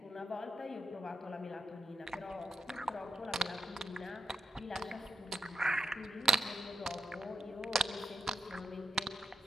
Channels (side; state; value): both; normal; correlation 0.80